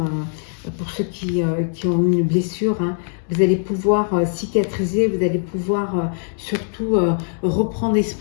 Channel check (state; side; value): silent; right; digital silence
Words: pour ceux qui ont une blessure, hein, vous allez pouvoir cicatriser, vous allez pouvoir surtout reprendre